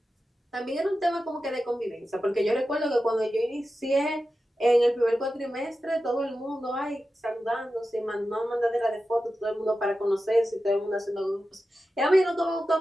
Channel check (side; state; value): both; normal; correlation 0.92